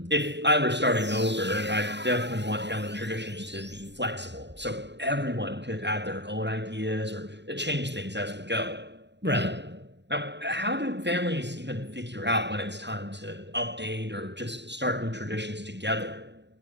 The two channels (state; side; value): late; left; 0.51 ms